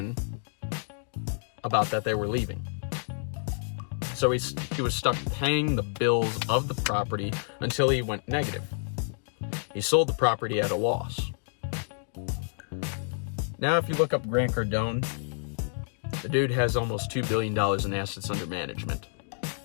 about that they were leaving. So he was stuck paying the bills of the property until he went negative. He sold the property at a loss. Now, if you look up Grant Cardone, the dude has almost $2 billion in assets under management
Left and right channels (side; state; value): right; silent; digital silence